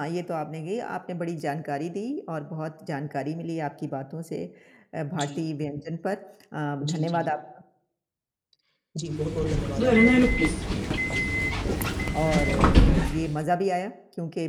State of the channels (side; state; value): both; identical; correlation 1.00